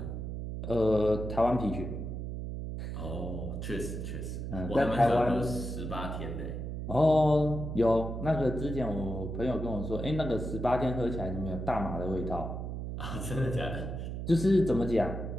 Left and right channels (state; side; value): noise; right; hum, 5 dB below the sound